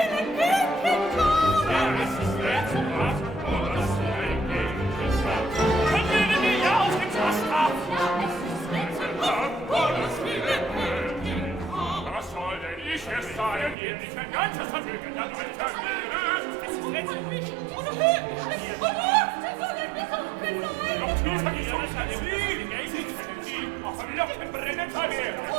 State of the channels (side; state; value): left; drops out; at 13.8 s